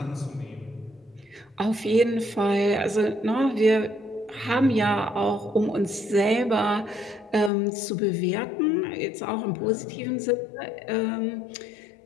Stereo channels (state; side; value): drops out; right; at 7.5 s